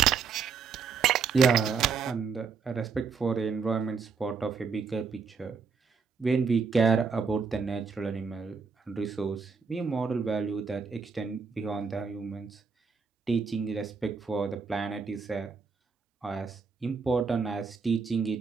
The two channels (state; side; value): quieter; left; 5.5 dB